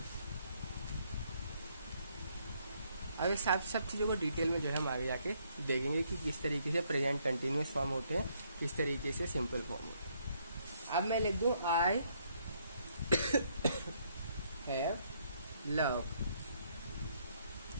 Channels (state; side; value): inverted; both; correlation -0.70